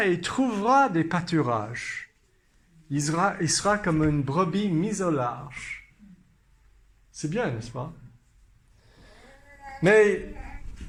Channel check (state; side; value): identical; both; correlation 1.00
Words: et trouvera des pâturages. Il sera comme une brebis mise au large. C'est bien, n'est-ce pas? Mais